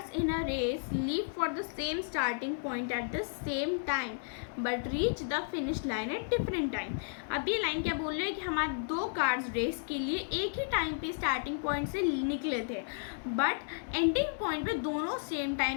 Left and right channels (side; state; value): right; silent; digital silence